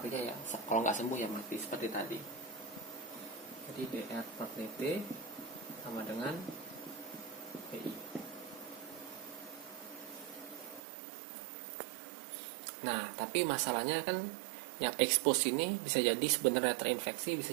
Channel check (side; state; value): left; drops out; at 10.8 s